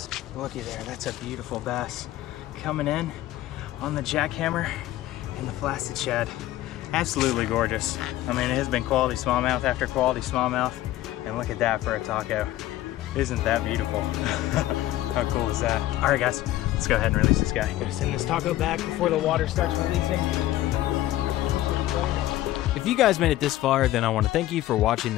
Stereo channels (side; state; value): right; quieter; 15.0 dB